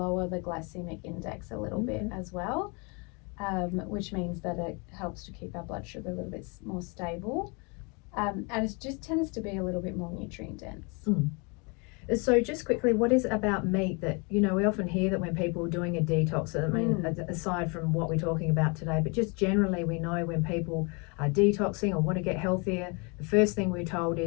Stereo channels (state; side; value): quieter; right; 31.6 dB